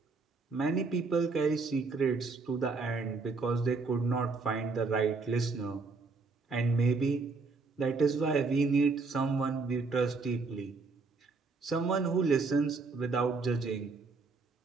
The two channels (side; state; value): left; quieter; 4.1 dB